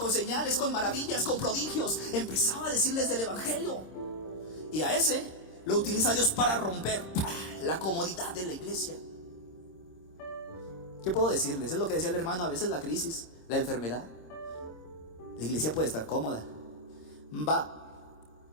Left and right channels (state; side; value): late; right; 26 ms